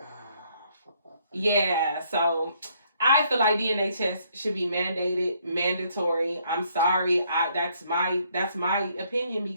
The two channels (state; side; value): inverted; both; correlation -0.68